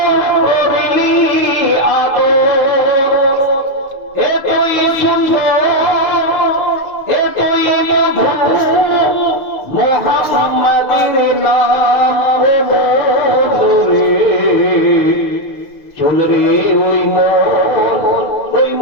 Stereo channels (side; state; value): right; late; 6.7 ms